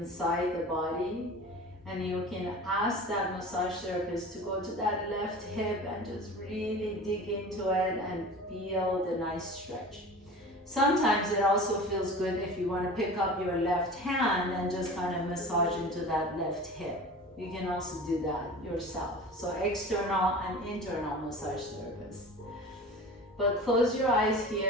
the body. And you can ask that massage therapist to go to that left hip and just really dig into it and feel the nice stretch. Sometimes it also feels good if you want to pick up your left hand and just kind of massage into that left hip. You can also do that yourself. So external and internal massage therapist. But close your eyes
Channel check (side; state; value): both; normal; correlation 0.37